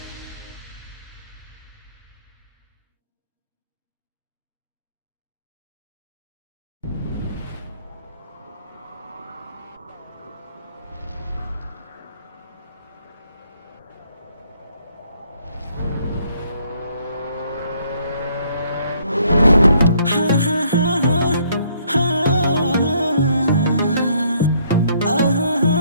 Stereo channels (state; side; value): inverted; both; correlation -0.66